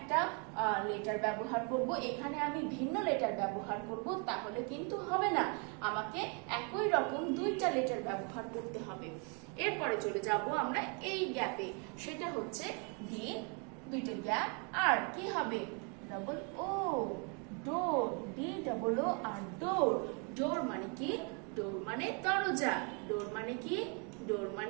লেটার ব্যবহার করব, এখানে আমি ভিন্ন লেটার ব্যবহার করব, তাহলে কিন্তু হবে না। আমাকে একই রকম দুইটা লেটার ব্যবহার করতে হবে। এরপরে চলে যাব আমরা এই গ্যাপে, সেটা হচ্ছে ডি, দুইটা গ্যাপ, আর কি হবে? ডাবল ও, ডোর, ডি ডাবল ও আর ডোর। ডোর মানে কি? ডোর মানে দরজা। ডোর মানে কি? ডোর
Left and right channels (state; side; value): quieter; left; 35.7 dB